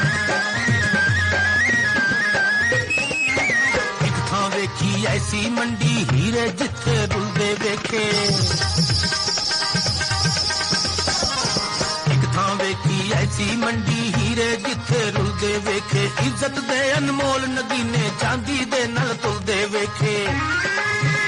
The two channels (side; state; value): both; identical; correlation 1.00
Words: ऐसी मंडी हीरे जिथे रुलदे वेखे, एक थां वेखी ऐसी मंडी हीरे जिथे रुलदे वेखे। इज्जत दे अनमोल नगीने चांदी दे नल तुलदे वेखे।